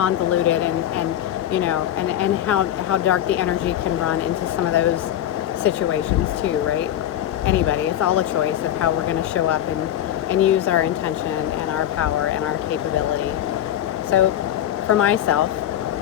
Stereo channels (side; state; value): right; quieter; 11.6 dB